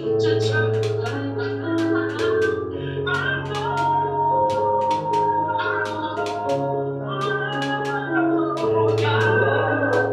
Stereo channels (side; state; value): both; identical; correlation 1.00